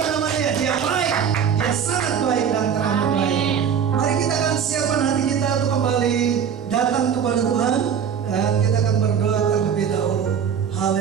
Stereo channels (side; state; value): left; quieter; 7.7 dB